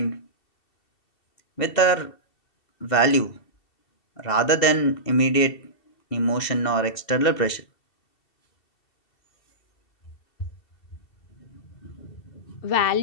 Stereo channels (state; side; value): late; right; 2.7 ms